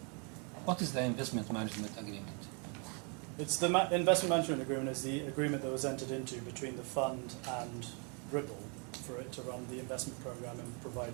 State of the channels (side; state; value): left; quieter; 36.0 dB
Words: What is the investment management agreement? It's the investment management agreement is the agreement that was entered into between the fund and Ribble for it to run the investment program and provide